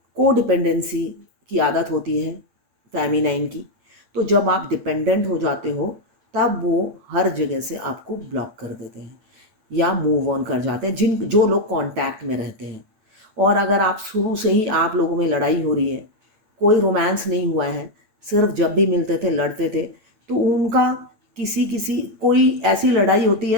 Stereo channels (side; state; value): left; late; 9.1 ms